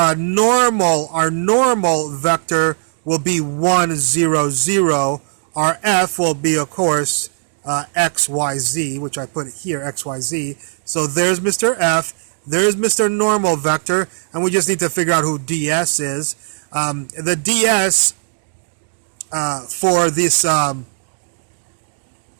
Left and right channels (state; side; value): silent; left; digital silence